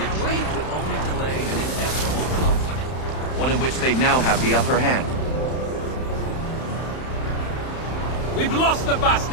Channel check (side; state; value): right; late; 31 ms